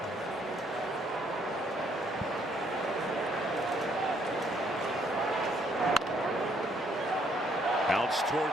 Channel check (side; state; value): both; normal; correlation 0.68